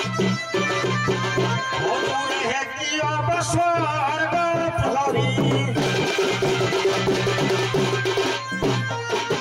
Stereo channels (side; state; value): both; identical; correlation 1.00